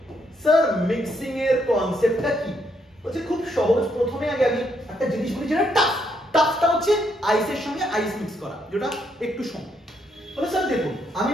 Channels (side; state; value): both; normal; correlation 0.75